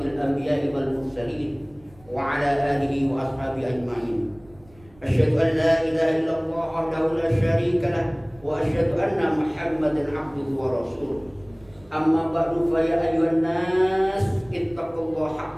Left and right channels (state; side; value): noise; right; rumble, 27 dB below the sound